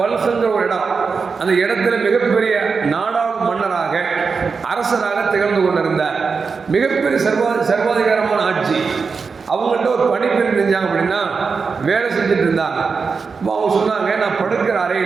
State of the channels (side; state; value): left; quieter; 5.1 dB